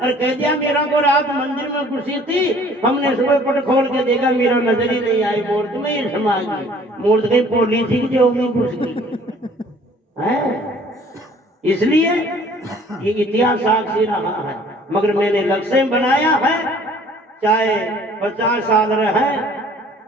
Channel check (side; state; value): both; normal; correlation 0.54